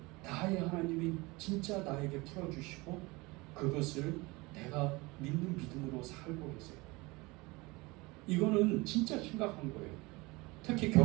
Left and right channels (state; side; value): quieter; left; 23.9 dB